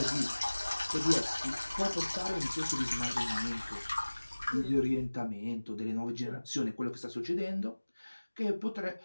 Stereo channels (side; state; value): both; inverted; correlation -1.00